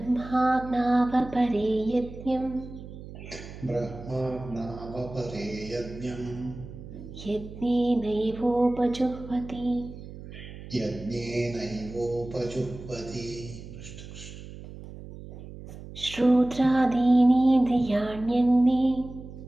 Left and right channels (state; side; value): noise; right; hum, 14 dB below the sound